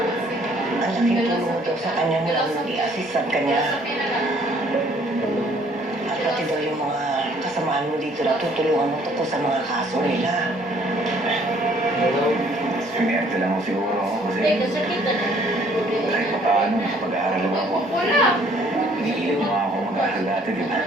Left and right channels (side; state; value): both; normal; correlation 0.60